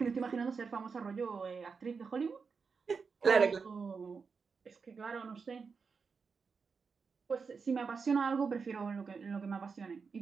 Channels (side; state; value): left; quieter; 5.3 dB